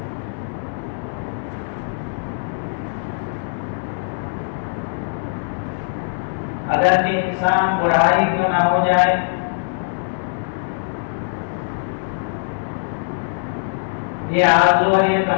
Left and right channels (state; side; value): silent; right; digital silence